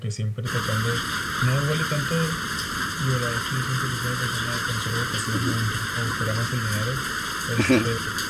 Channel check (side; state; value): both; identical; correlation 1.00